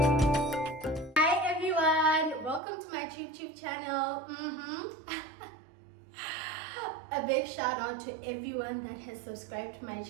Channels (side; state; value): left; drops out; at 2.6 s